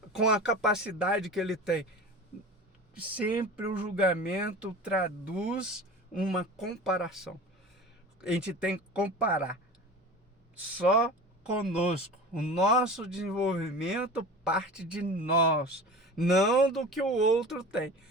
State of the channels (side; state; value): both; normal; correlation 0.35